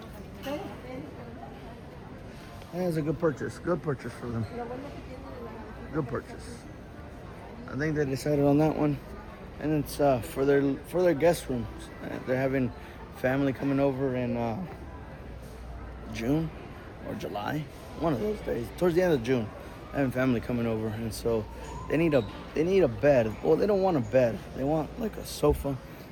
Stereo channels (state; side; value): identical; both; correlation 1.00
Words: that's a good purchase. Good purchase for them. Good purchase. I think they decided on that one, and it's for their guest rooms. They're having family coming over, and June or July, one of those days, towards the end of June. I have family coming over, and so they need a bed. Well, they don't want a bed. They want like a sofa,